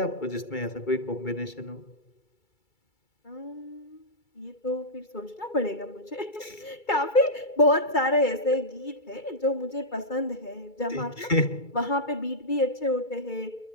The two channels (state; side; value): late; right; 2.3 ms